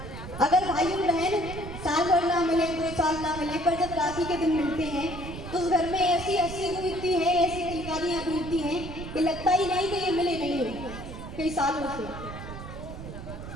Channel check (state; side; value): noise; right; rumble, 10 dB below the sound